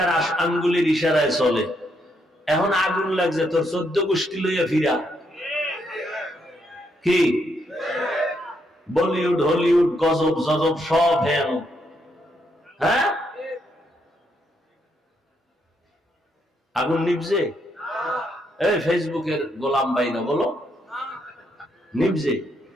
আঙ্গুলের ইশারায় চলে। এখন আগুন লাগছে তোর 14 গোষ্ঠী লইয়া ফিরা। কি বলিউড হলিউড গজব জজব সব হেন। হ্যাঁ, আগুন নিভছে? এই ফেসবুকের গোলাম ভাই না বলো, নিভছে?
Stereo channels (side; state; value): both; normal; correlation 0.77